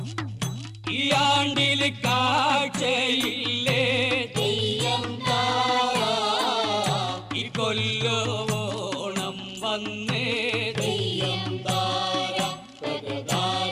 ഈ ആണ്ടിൽ കാഴ്ചയില്ലേ തെയ്യം താര ഈ കൊല്ലോണം വന്നേ തെയ്യം താര തക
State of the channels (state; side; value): identical; both; correlation 1.00